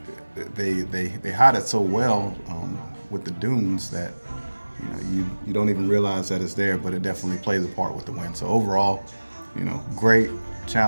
they hide it so well with the dunes that you don't even realize that it's there, but it definitely plays a part with the wind. So overall, great,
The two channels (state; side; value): inverted; both; correlation -1.00